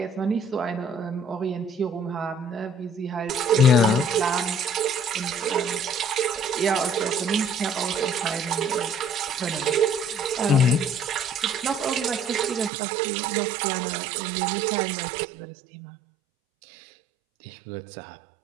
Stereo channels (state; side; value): drops out; left; at 12.7 s